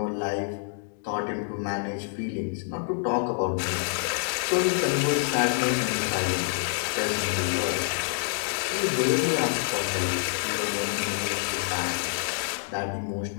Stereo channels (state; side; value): silent; right; digital silence